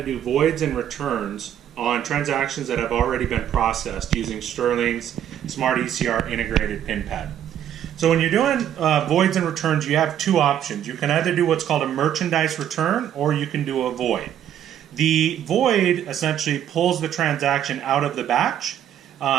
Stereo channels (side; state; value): left; quieter; 10.3 dB